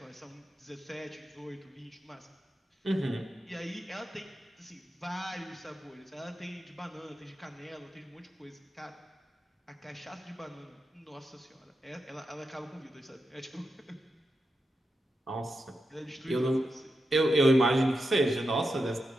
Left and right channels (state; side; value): normal; both; correlation 0.88